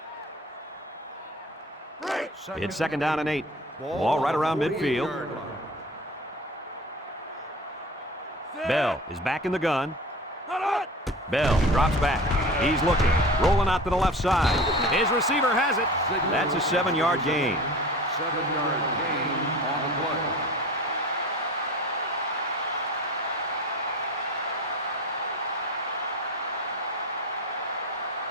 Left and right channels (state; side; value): normal; both; correlation 0.37